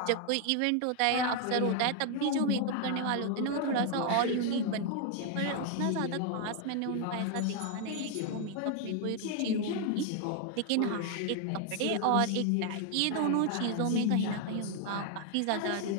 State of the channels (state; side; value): different; both; correlation 0.00